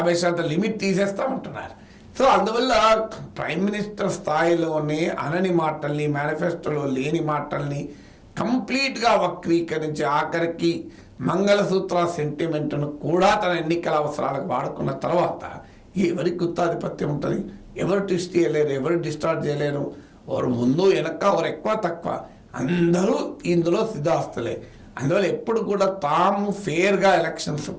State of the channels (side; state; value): both; identical; correlation 1.00